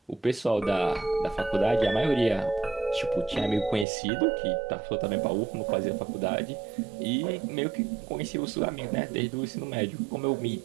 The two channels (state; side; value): drops out; left; at 3.9 s